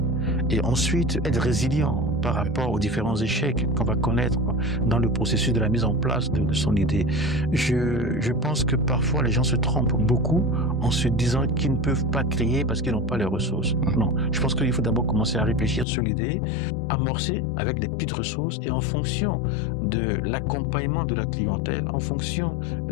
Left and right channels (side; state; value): right; drops out; at 15.9 s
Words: Et ensuite, être résilient par rapport aux différents échecs qu'on va connaître dans le processus de la mise en place de son idée. Je pense que parfois, les gens se trompent beaucoup en se disant qu'ils ne peuvent pas créer parce qu'ils n'ont pas les ressources. Non, je pense qu'il faut d'abord commencer à réfléchir sur l'idée, amorcer avec des petites ressources et en fonction de l'accompagnement de la clientèle, en fonction